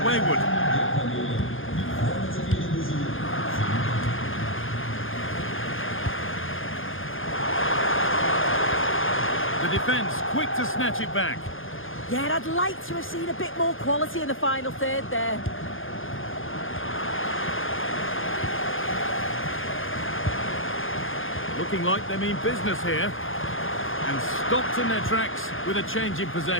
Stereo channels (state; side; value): late; right; 0.59 ms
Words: wayward. The defence quick to snatch it back. Yeah, I'd like to have seen a bit more quality in the final third there. looking like they mean business here. And stopped in their tracks with a change in